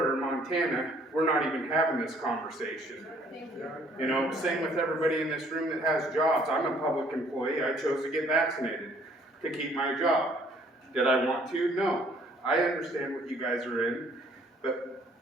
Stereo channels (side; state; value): both; normal; correlation 0.61